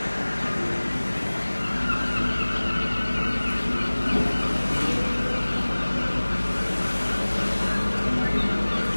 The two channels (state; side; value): inverted; both; correlation -1.00